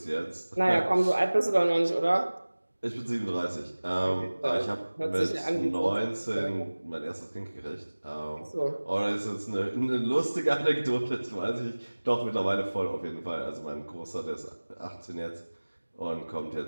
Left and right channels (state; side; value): inverted; both; correlation -1.00